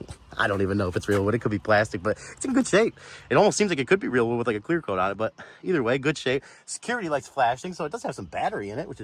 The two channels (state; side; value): identical; both; correlation 1.00